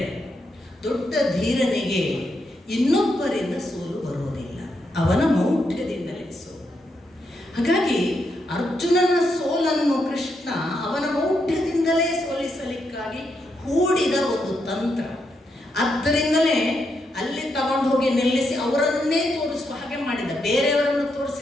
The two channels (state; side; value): normal; both; correlation 0.81